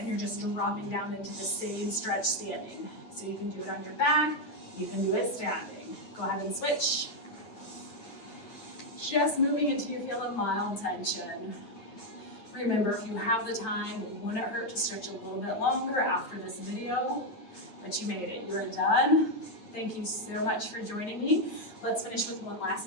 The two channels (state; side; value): late; right; 9.1 ms